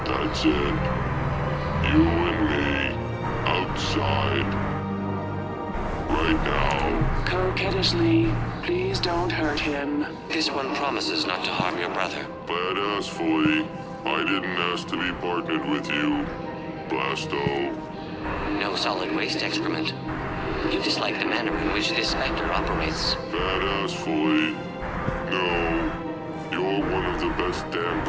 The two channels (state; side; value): identical; both; correlation 1.00